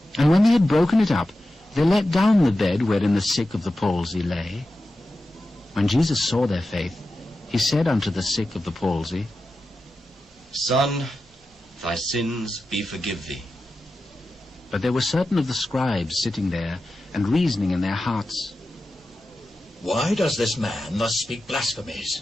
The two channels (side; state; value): both; normal; correlation 0.92